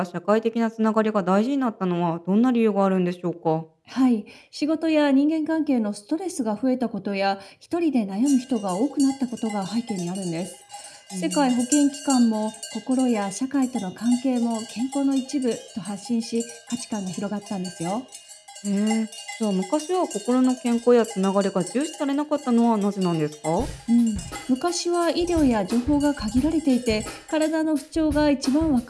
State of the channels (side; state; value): both; identical; correlation 1.00